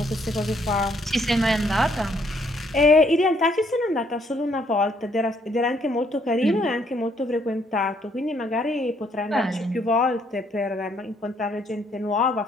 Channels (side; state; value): both; normal; correlation 0.68